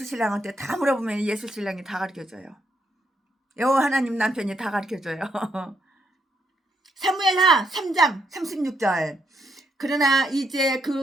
신랑한테 다 물어보면 예수 신랑이 다 가르쳐줘요. 여호와 하나님 남편이 다 가르쳐줘요. 사무엘하 3장 36절. 그러나 이제 그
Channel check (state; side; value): normal; both; correlation 0.77